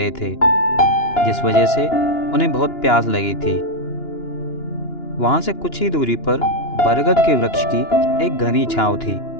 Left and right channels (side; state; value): right; late; 2.9 ms